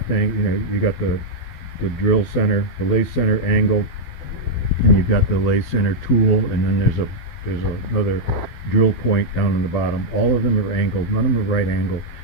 angle. You know, you got the drill center, the lathe center angle, and you've got the lathe center tool, and then there's another drill point down on the bottom. All of them are angled, none of them are right angle,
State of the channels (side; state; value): right; late; 12 ms